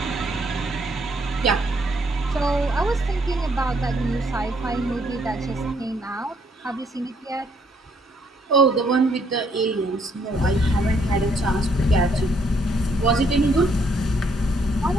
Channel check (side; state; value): both; normal; correlation 0.69